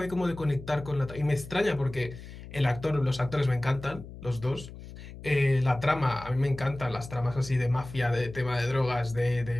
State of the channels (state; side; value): noise; left; hum, 14 dB below the sound